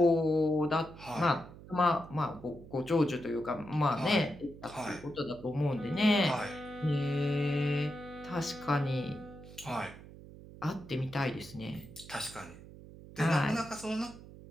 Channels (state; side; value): noise; right; hum, 17 dB below the sound